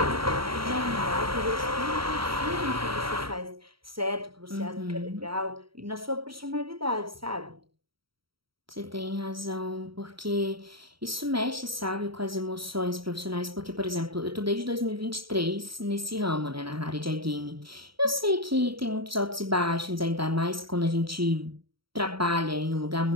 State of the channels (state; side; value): late; left; 0.74 ms